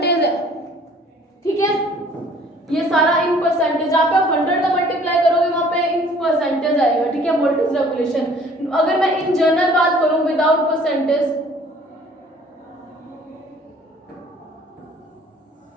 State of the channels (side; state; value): both; normal; correlation 0.54